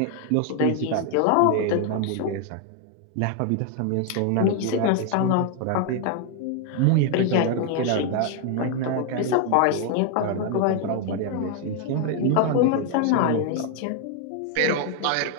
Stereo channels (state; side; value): different; both; correlation 0.00